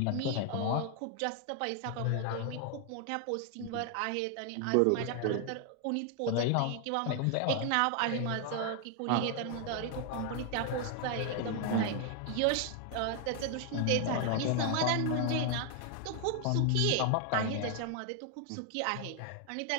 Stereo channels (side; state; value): both; different; correlation 0.00